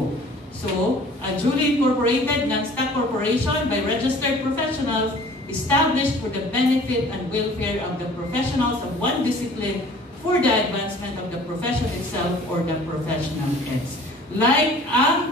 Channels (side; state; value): both; normal; correlation 0.49